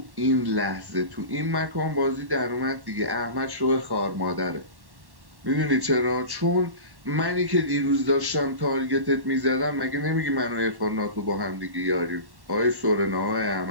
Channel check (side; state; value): left; late; 1.1 ms